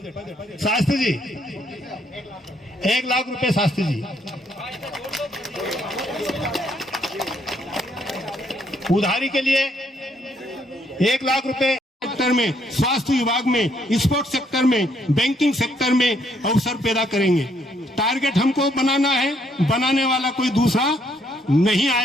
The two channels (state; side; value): normal; both; correlation 0.70